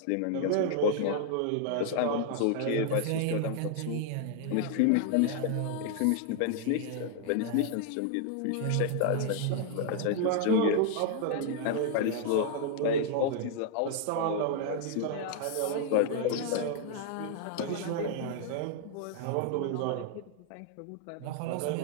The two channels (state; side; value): different; both; correlation 0.00